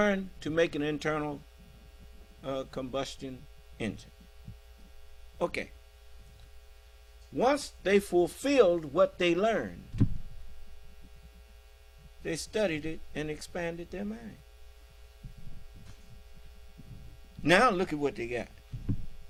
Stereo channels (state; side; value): identical; both; correlation 1.00